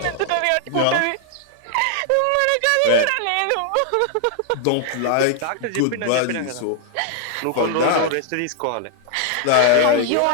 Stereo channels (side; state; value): both; different; correlation 0.00